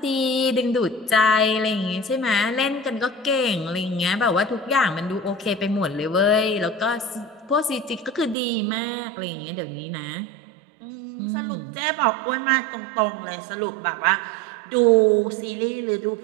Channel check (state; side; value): drops out; left; at 8.3 s